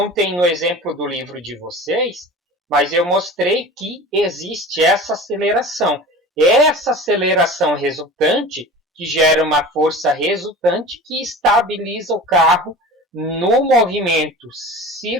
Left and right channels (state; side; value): normal; both; correlation 0.37